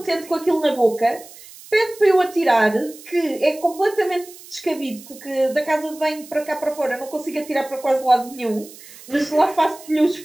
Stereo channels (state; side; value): noise; right; hiss, 19 dB below the sound